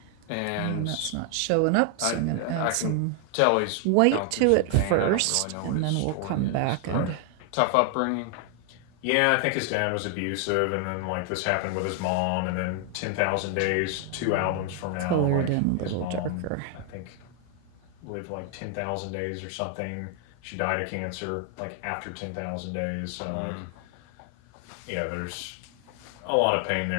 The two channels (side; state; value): both; different; correlation 0.00